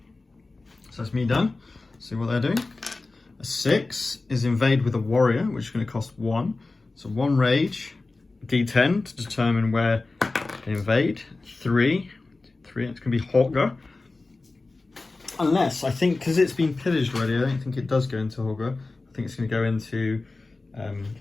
So that's me done. See what they're doing. A 6 is invade with a warrior, which is going to cost 1. So 1 rage, D10 to determine where they invade. 3, it's going to be Hogger. Unless, I think, because it's been pillaged already, I don't think it does go into Hogger. I think it's going to go into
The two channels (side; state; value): right; quieter; 3.4 dB